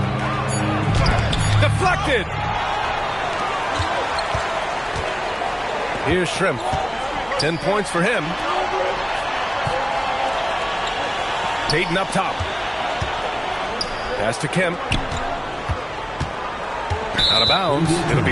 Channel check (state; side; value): identical; both; correlation 1.00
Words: Deflected. Here's Shrimp. 10 points for him. Peyton up top. Pass to Kemp. Out of bounds. It'll